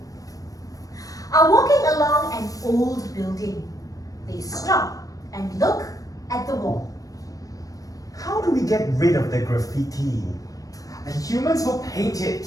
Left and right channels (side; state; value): right; late; 0.17 ms